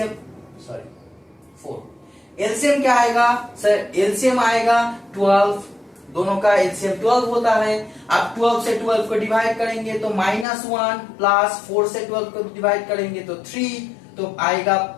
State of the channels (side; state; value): right; drops out; at 10.5 s